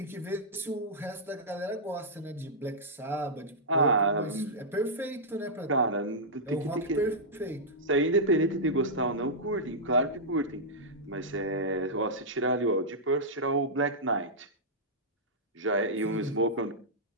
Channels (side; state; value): both; normal; correlation -0.11